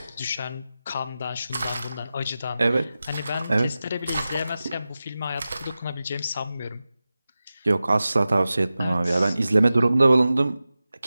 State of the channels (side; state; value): both; inverted; correlation -0.94